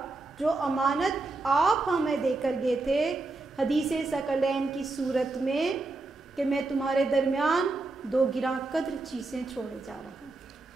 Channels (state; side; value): quieter; left; 3.3 dB